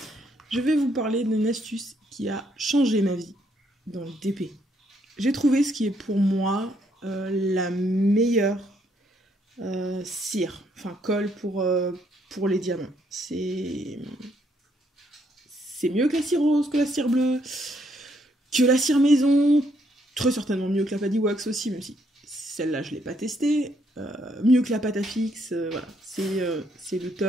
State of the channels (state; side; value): normal; both; correlation 0.72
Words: Je vais vous parler d'une astuce qui a changé ma vie dans le DP. J'ai trouvé ce qui est pour moi la meilleure cire, enfin colle pour les diamants. C'est mieux que la cire rose, que la cire bleue, que la cire maison, très certainement mieux que la Paddy Wax aussi, même si celle-là je ne l'ai pas testée, mieux que la pâte à fixe, voilà, c'est le